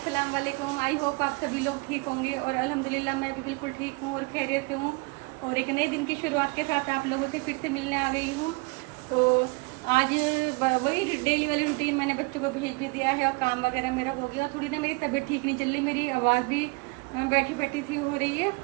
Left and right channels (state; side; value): quieter; left; 28.5 dB